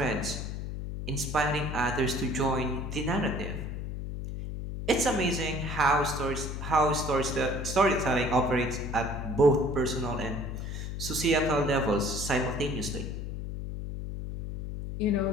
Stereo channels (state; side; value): noise; left; hum, 5 dB below the sound